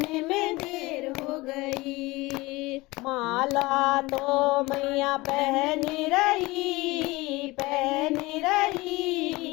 में देर हो गई। माला तो मैया पहन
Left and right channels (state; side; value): quieter; right; 21.6 dB